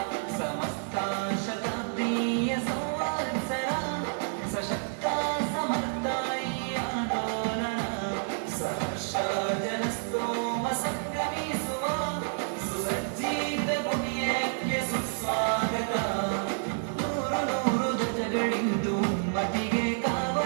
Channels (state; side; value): silent; left; digital silence